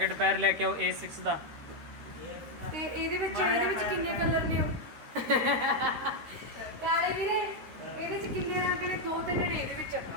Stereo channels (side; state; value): left; late; 13 ms